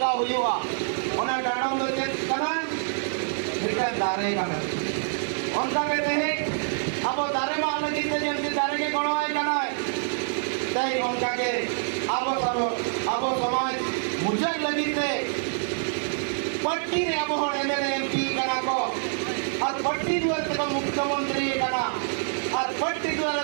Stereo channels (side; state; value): left; silent; digital silence